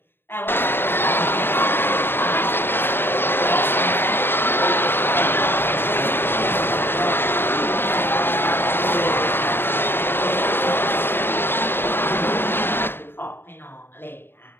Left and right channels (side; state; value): right; late; 0.10 ms